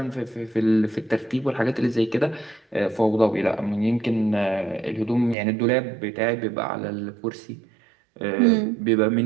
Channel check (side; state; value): left; drops out; at 5.4 s